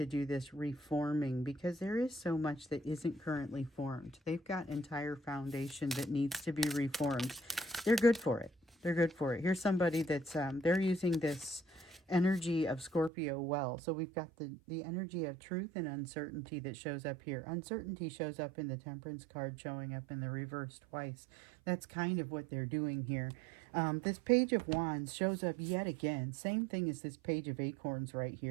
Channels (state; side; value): drops out; left; at 13.1 s